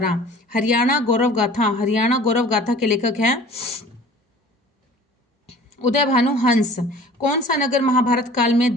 हरियाणा गौरव गाथा के लेखक हैं उदय भानु हंस। कौन सा नगर महाभारत काल में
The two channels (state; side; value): normal; both; correlation 0.46